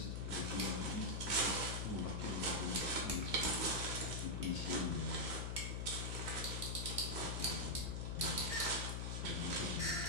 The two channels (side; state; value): left; noise; hum, 1 dB below the sound